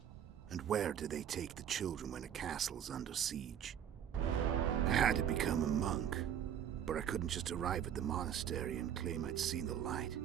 And where do they take the children when a castle's under siege? I had to become a monk, but I couldn't just arrive at the monastery and claim I'd seen the light.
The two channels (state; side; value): quieter; left; 9.4 dB